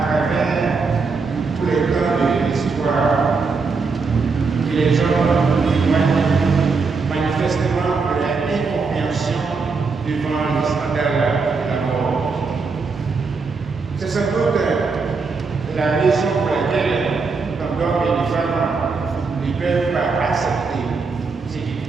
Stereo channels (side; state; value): left; quieter; 4.6 dB